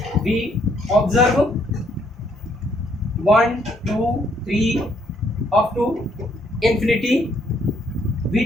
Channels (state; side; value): normal; both; correlation 0.69